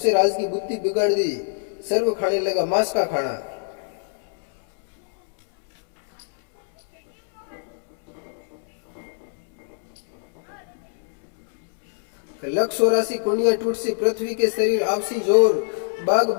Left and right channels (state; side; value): silent; right; digital silence